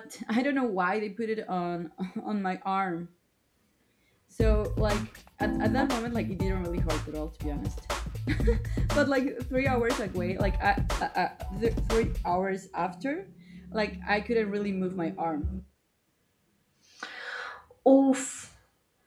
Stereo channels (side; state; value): both; identical; correlation 1.00